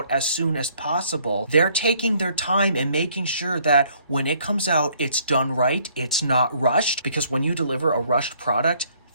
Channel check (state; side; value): inverted; both; correlation -0.64